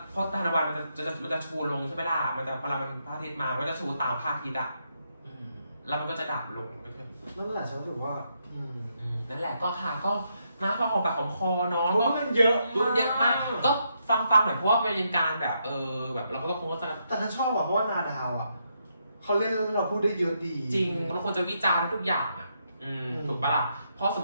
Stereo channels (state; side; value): inverted; both; correlation -0.79